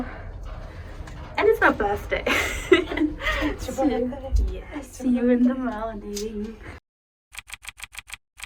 and it's my birthday. It's your birthday. Yes, see you in the morning.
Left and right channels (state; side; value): identical; both; correlation 1.00